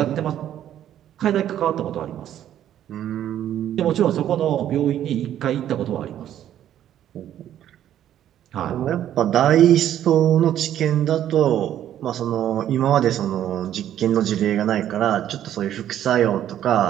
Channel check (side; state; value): left; quieter; 11.2 dB